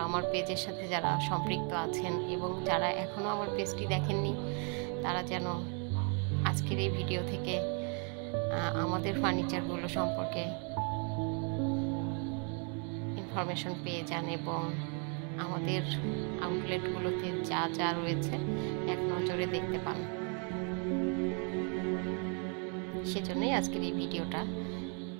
আমার পেজের সাথে যারা সম্পৃক্ত আছেন এবং যারা এখনও আমার পেজটি দেখেননি তারা যেন আজকের এই ভিডিও থেকে আমাদের ফার্নিচারগুলো সম্পর্কে ইনফরমেশন পেয়ে যান এবং আমাদের আউটলেটগুলোতে যা যা রয়েছে এক নজরে দেখতে পান। সেজন্যই আজকের এই ভিডিওটা।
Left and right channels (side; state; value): left; quieter; 37.9 dB